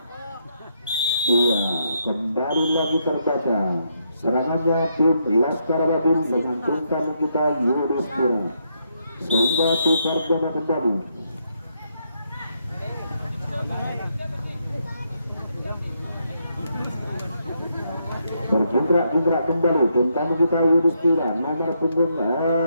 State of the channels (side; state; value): both; inverted; correlation -0.77